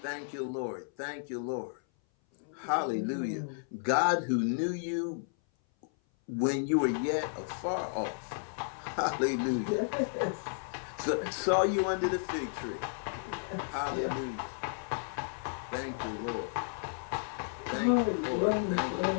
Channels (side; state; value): right; silent; 56 dB below the other